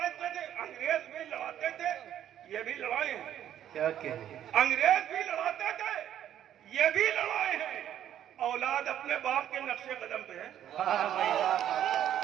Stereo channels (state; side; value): quieter; left; 10.8 dB